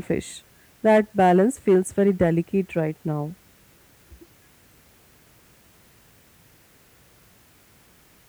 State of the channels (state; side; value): identical; both; correlation 1.00